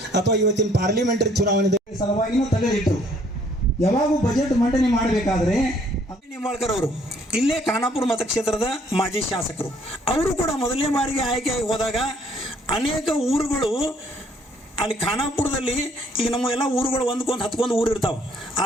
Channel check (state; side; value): normal; both; correlation 0.63